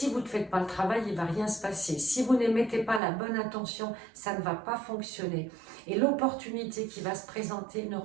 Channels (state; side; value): drops out; left; at 3.0 s